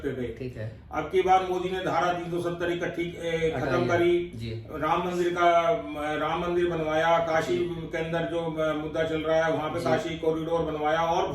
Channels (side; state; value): both; identical; correlation 1.00